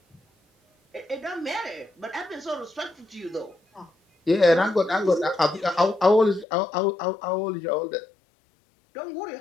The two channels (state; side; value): drops out; right; at 6.5 s